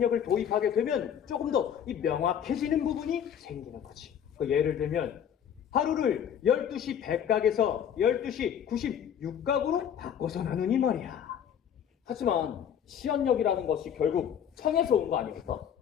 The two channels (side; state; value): right; quieter; 8.8 dB